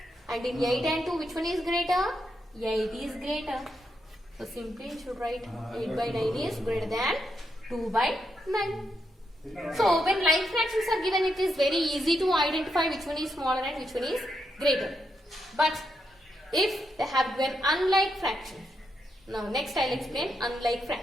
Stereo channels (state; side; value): normal; both; correlation 0.82